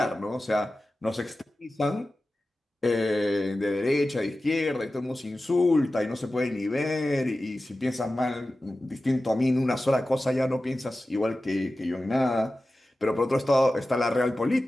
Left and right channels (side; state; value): both; normal; correlation 0.94